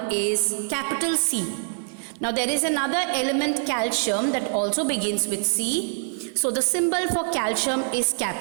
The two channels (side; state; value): left; silent; 62 dB below the other